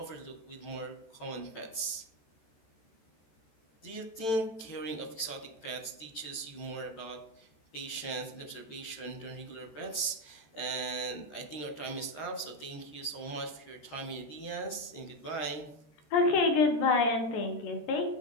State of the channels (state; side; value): late; right; 13 ms